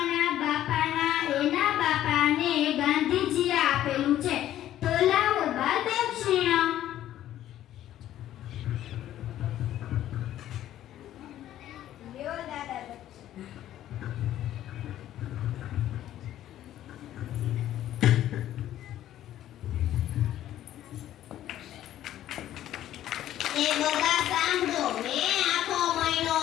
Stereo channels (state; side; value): quieter; right; 12.5 dB